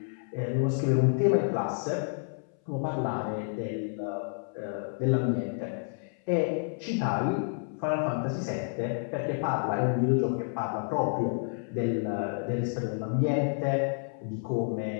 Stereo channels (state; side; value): silent; right; 58 dB below the other